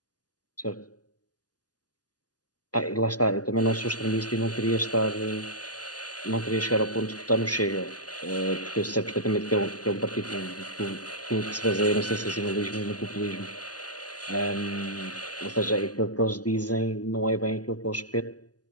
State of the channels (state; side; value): late; right; 0.68 ms